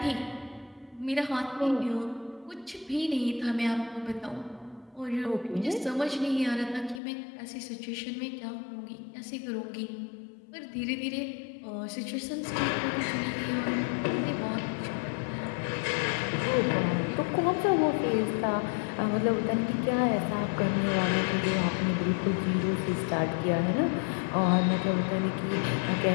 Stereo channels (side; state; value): right; drops out; at 7.0 s